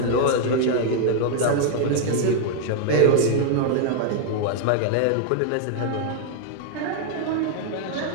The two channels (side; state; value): both; different; correlation 0.00